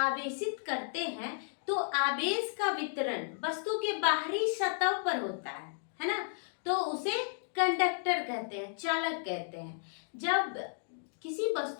करते हैं तो आवेश का वितरण वस्तु के बाहरी सतह पर होता है ना। तो उसे कंडक्टर कहते हैं, चालक कहते हैं। जब किसी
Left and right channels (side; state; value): right; silent; digital silence